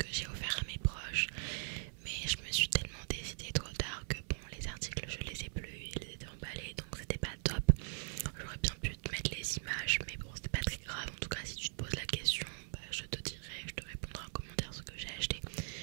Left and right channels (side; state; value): left; silent; 51 dB below the other